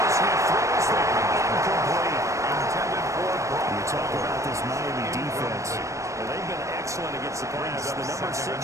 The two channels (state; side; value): late; left; 0.15 ms